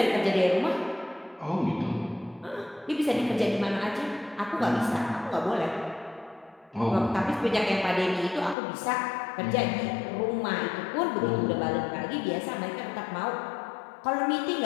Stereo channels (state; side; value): drops out; right; at 8.6 s